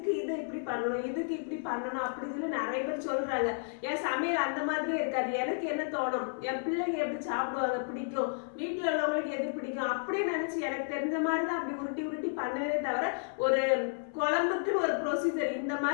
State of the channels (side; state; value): right; silent; 56 dB below the other